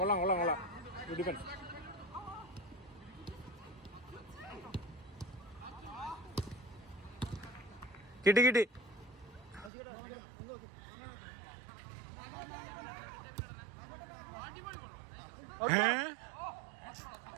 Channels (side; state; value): left; drops out; at 9.7 s